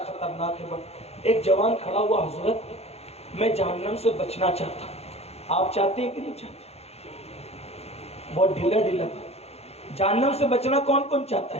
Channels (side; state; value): right; late; 0.30 ms